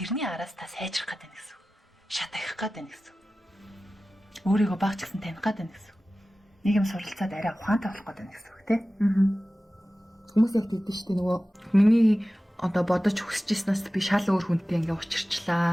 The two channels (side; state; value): both; normal; correlation 0.96